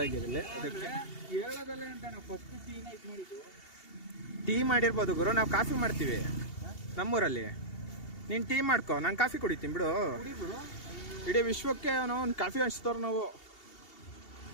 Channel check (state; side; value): late; right; 2.7 ms